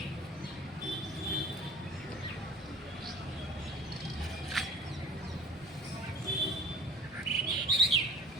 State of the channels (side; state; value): both; normal; correlation 0.47